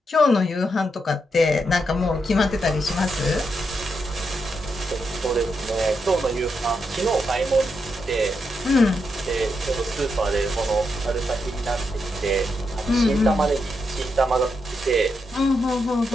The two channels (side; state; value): both; normal; correlation 0.83